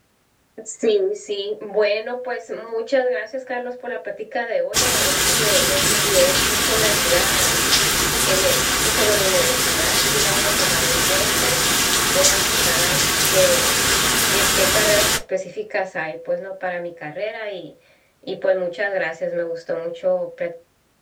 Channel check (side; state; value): both; identical; correlation 1.00